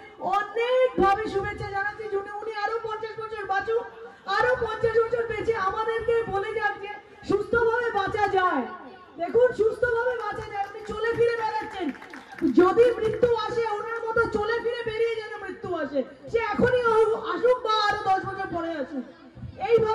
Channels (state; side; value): identical; both; correlation 1.00